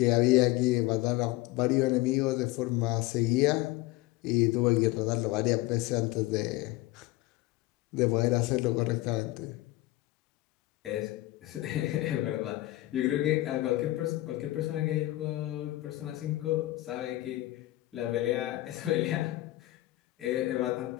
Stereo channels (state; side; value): quieter; right; 18.1 dB